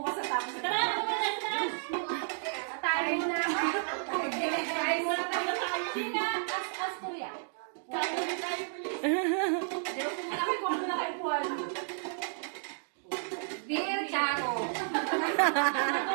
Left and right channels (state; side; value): silent; left; digital silence